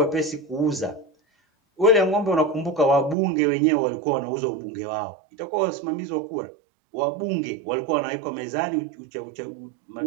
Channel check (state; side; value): drops out; left; at 3.2 s